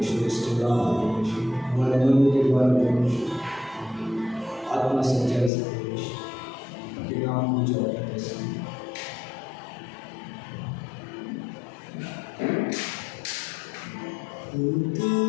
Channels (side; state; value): right; drops out; at 5.5 s